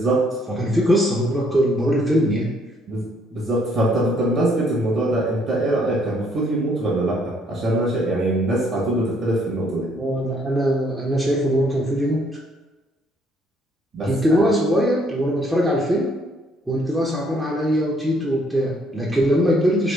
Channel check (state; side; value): normal; both; correlation 0.67